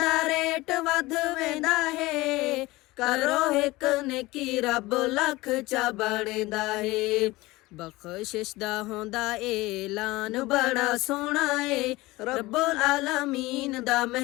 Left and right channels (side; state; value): right; quieter; 20.3 dB